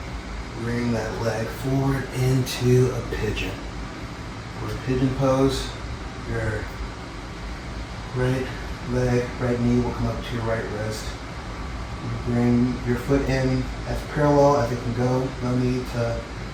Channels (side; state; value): both; identical; correlation 1.00